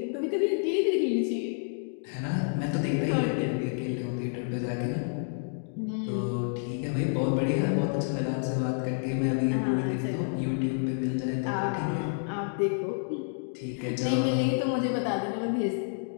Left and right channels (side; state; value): right; silent; digital silence